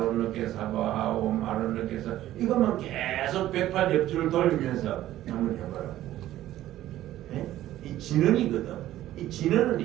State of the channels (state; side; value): quieter; left; 13.8 dB